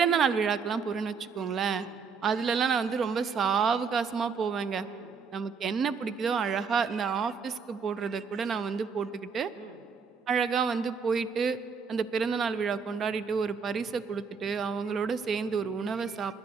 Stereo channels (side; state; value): left; quieter; 5.6 dB